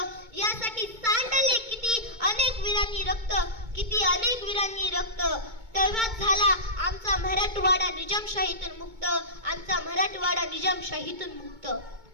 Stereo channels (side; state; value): left; late; 2.2 ms